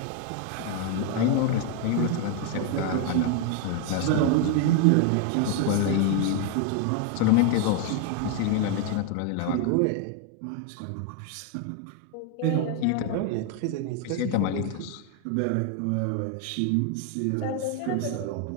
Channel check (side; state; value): both; different; correlation 0.00